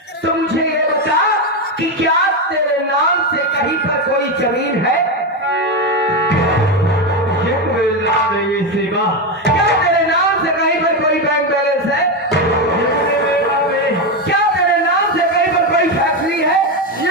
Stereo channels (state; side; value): normal; both; correlation 0.11